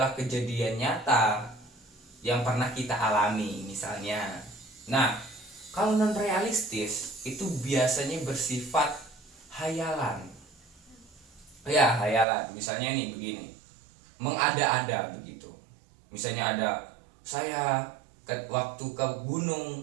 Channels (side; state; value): left; drops out; at 12.2 s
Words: kejadian nyata yang pernah kita alami misalnya. Nah, kalau non realistis itu biasanya bersifat hayalan. Ya, hayalan. Misalnya nih begini. Mengada-ada begitu. Misalnya ada saya waktu ke